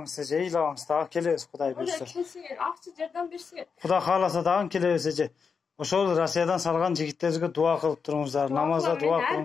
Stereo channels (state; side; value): quieter; right; 5.7 dB